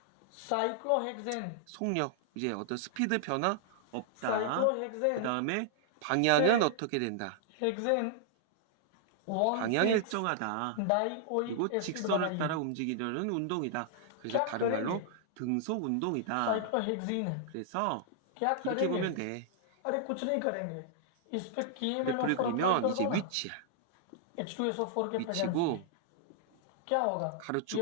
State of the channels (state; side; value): different; both; correlation -0.01